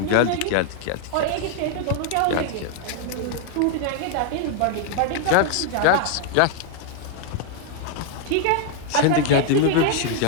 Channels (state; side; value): different; both; correlation 0.00